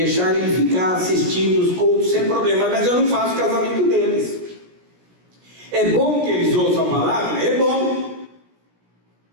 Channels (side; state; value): left; late; 17 ms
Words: eles ficar assistindo os cultos sem problema, mas eu não faço o casamento deles. É bom que eles ouçam a palavra? É bom.